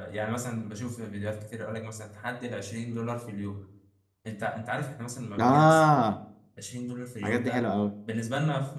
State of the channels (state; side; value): identical; both; correlation 1.00